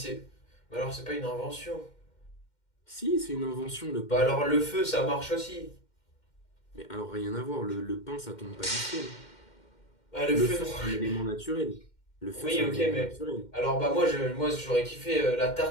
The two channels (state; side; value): late; right; 2.1 ms